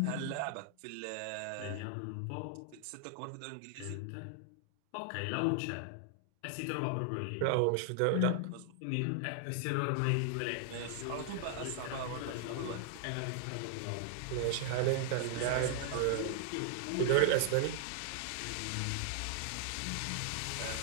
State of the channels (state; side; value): different; both; correlation 0.00